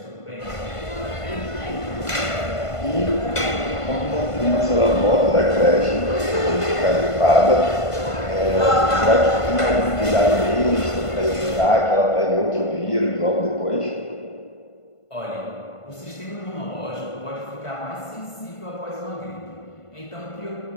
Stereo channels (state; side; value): late; right; 1.5 ms